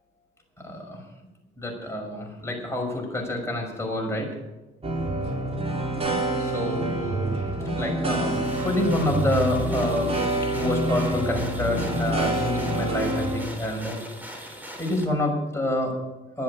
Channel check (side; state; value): both; normal; correlation 0.50